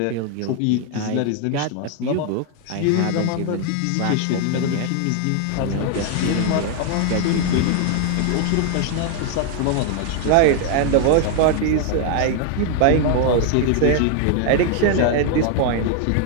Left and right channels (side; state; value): both; different; correlation 0.01